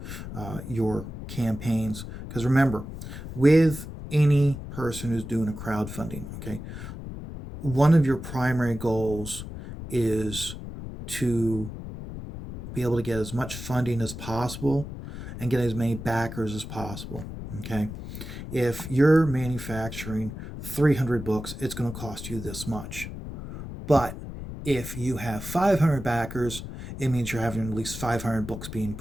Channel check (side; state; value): left; noise; rumble, 9 dB below the sound